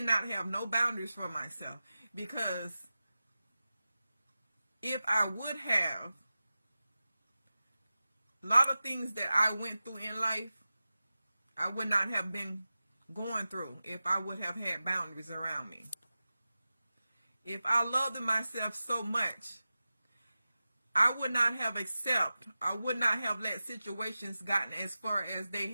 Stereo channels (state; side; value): inverted; both; correlation -0.94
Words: not have no boundaries for myself, because if I would have, a lot of things that I went through in life, I would not have been going through if I would have had boundaries around me. If I loved myself so much, I would not have I would not have let situations gotten as far as they